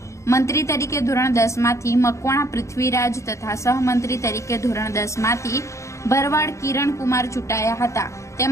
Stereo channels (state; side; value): late; right; 0.14 ms